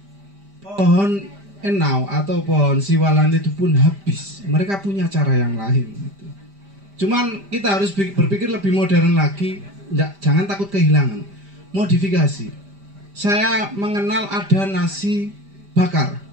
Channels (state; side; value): late; left; 5.0 ms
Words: Pohon enau atau pohon siwalan itu pun habis. Mereka punya cara yang lain. Gitu. Cuman kita harus berpikir lebih modern lagi. Jangan takut kehilangan. Modifikasi. Saya mengenal ada nasi bakar.